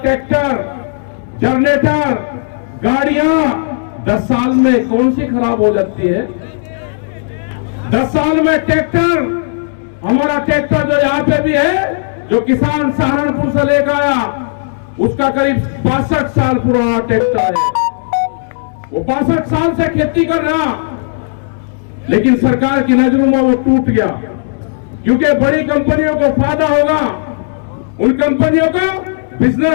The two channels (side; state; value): right; silent; digital silence